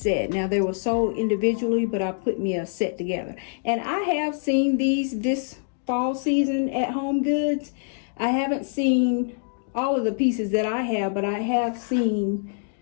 Now they were sold individually, but I put me a set together. And I have seen these this fall season at Home Goods. I haven't seen all of the pieces that I have, but I have seen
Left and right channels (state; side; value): silent; right; digital silence